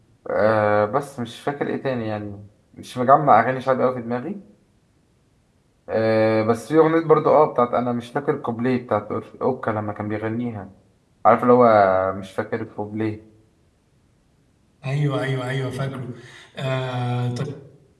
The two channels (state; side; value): identical; both; correlation 1.00